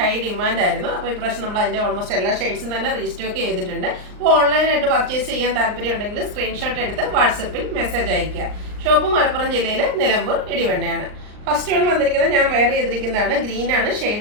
ഡിമാൻഡ് ആയിരുന്നു. അപ്പോൾ ഇപ്രാവശ്യം നമ്മൾ അതിൻ്റെ ഓൾമോസ്റ്റ് എല്ലാ ഷെയ്ഡ്സും തന്നെ റീസ്റ്റോക്ക് ചെയ്തിട്ടുണ്ട്. അപ്പോൾ ഓൺലൈനായിട്ട് പർച്ചേസ് ചെയ്യാൻ താല്പര്യം ഉണ്ടെങ്കിൽ സ്ക്രീൻഷോട്ട് എടുത്ത് വാട്സപ്പിൽ മെസ്സേജ് അയയ്ക്കുക. ഷോപ്പ് മലപ്പുറം ജില്ലയിൽ നിലമ്പൂർ ഇടിവണ്ണയാണ്. ഫസ്റ്റ് വൺ വന്നിരിക്കുന്നത് ഞാൻ വെയർ ചെയ്തിരിക്കുന്നതാണ്. ഗ്രീനാണ്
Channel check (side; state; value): left; late; 39 ms